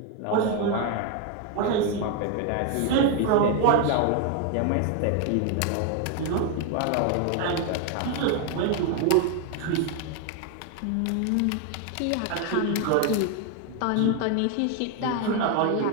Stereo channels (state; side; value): different; both; correlation 0.01